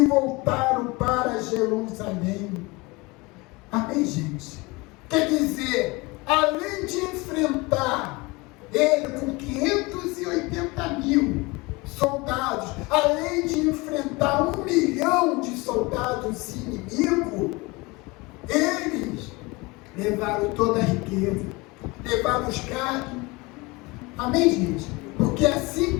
voltaram para Jerusalém. Amém, gente? Quer dizer, além de enfrentar ele com 580 mil soldados, além de enfrentar 1 milhão de soldados inimigos, eles levaram toda a riqueza, levaram os gados. Amém, gente? Porque assim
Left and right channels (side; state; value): right; quieter; 24.5 dB